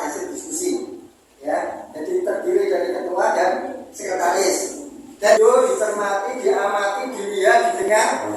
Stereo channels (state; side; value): identical; both; correlation 1.00